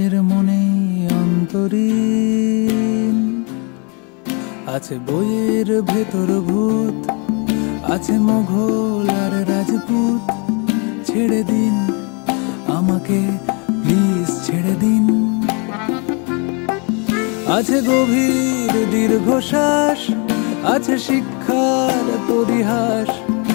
মনে অন্তরীণ। আছে বইয়ের ভেতর ভূত, আছে মোঘল আর রাজপুত। ছেড়ে দিন আমাকে, প্লিজ ছেড়ে দিন। আছে গভীর দীর্ঘশ্বাস, আছে শিক্ষার পরিহাস,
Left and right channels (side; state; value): right; quieter; 33.7 dB